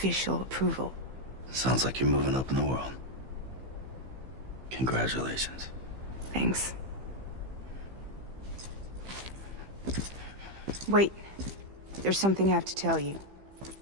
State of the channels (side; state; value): left; late; 15 ms